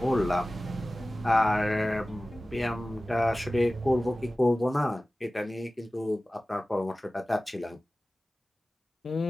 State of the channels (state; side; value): normal; both; correlation 0.97